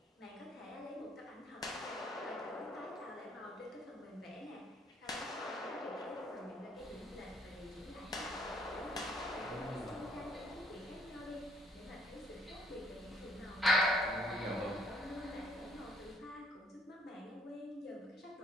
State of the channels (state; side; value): normal; both; correlation 0.65